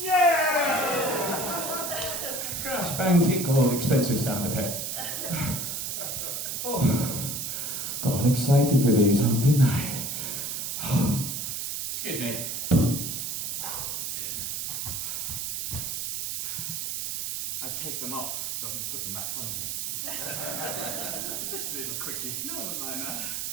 Yeah! Crash, bang, tinkle, expensive sound effect. Oh, got excited with these on, didn't I? Excuse me. I take them off so I can put them back on again. Just a little quickie. No one would mind that.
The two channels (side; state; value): right; noise; hiss, 3 dB below the sound